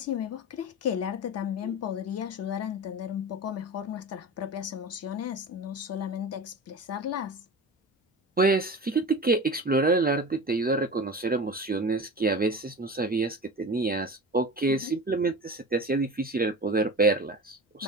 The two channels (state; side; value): normal; both; correlation 0.32